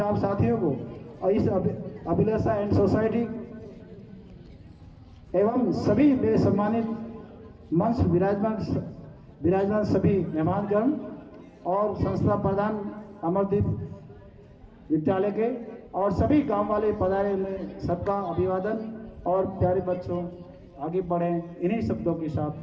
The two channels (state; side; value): identical; both; correlation 1.00